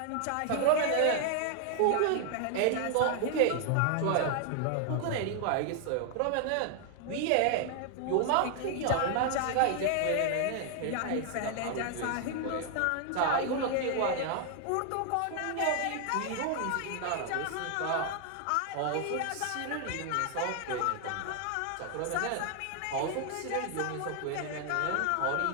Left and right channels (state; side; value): different; both; correlation 0.00